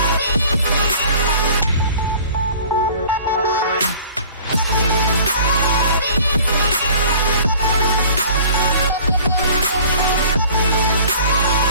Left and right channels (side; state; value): both; inverted; correlation -0.48